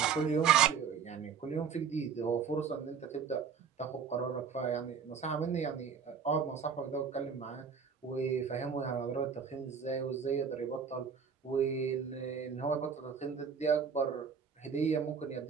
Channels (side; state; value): left; quieter; 6.6 dB